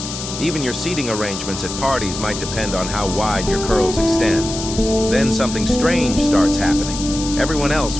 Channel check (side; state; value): left; noise; hiss, 8 dB below the sound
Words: Even your seating arrangements at parties might depend on how wide your curls extend. Then something strange starts happening. Everyone else